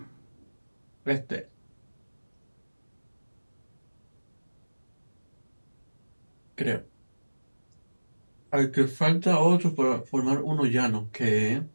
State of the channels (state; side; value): inverted; both; correlation -1.00